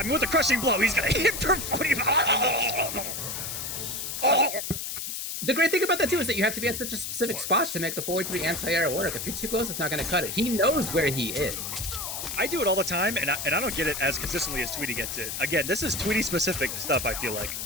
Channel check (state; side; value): noise; left; hiss, 5 dB below the sound